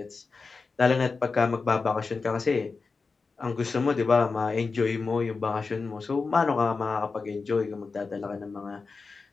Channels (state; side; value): quieter; right; 4.4 dB